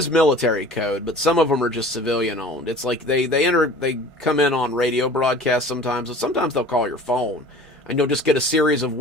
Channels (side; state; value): both; normal; correlation 0.43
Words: military code, but some of them are just civilian owned. It's like they come in on radio broadcasts sometimes, but sometimes they'll call your phone and you'll just get a series of